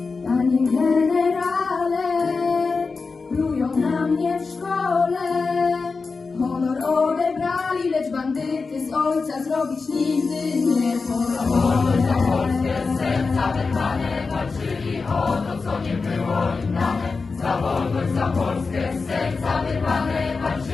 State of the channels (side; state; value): right; quieter; 4.4 dB